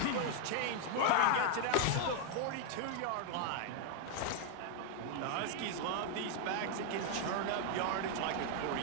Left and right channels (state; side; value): different; both; correlation 0.00